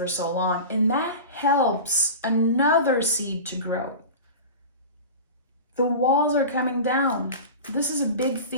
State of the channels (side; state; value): both; inverted; correlation -0.32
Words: so long. And that helps another seed to grow. The walls are coming down. This is a big